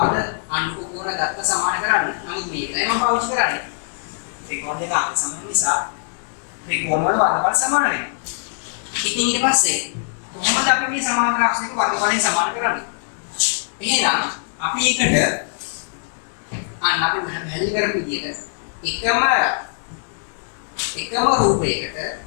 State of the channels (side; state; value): right; silent; digital silence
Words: අනුරූප කෝණ ගත්ත සමාන කරන්නේ. නමුත් මේකයි මම පාවිච්චි කරන්නේ. ත්‍රිකෝණ දෙක අංග සම නිසා ත්‍රිකෝණ වල වර්ගඵල සමාන වෙනවා. ඉතින් ඊට පස්සේ කොහොමද අපි මේ සමාන්තර අක්ෂරයක වර්ගඵලයෙන් සමාන කරන්නේ? එහෙනම් අපි එකට අපි පැහැදිලි කරපු විදිහට එකම රූපයකට